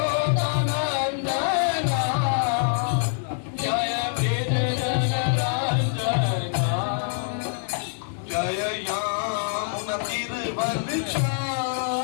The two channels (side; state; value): right; silent; digital silence